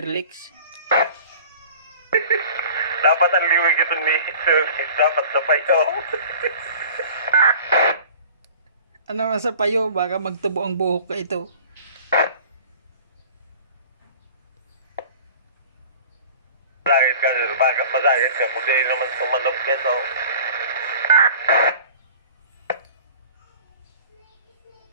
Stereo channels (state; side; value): inverted; both; correlation -0.44